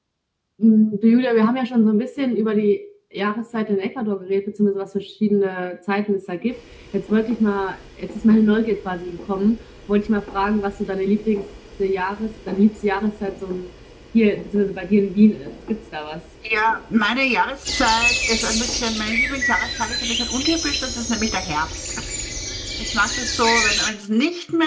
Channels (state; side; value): identical; both; correlation 1.00